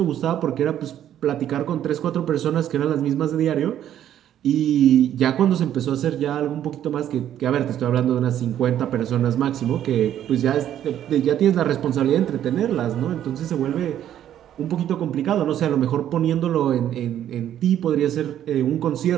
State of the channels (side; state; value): left; quieter; 10.9 dB